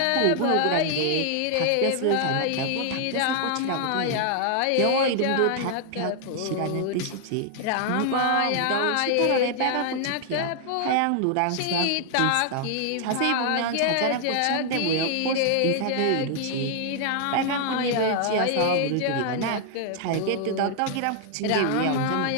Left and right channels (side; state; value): both; different; correlation 0.00